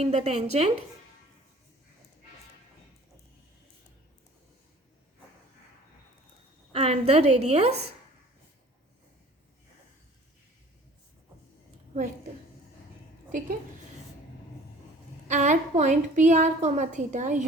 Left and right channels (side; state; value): both; normal; correlation 0.49